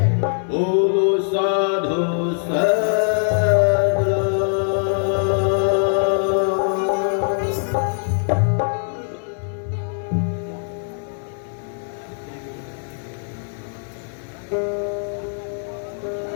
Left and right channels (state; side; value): silent; right; digital silence